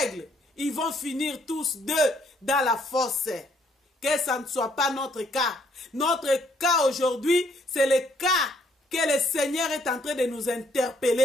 ils vont finir tous deux dans la fosse. Que ça ne soit pas notre cas. Notre cas aujourd'hui, c'est le cas que le Seigneur est en train de nous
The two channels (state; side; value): normal; both; correlation 0.68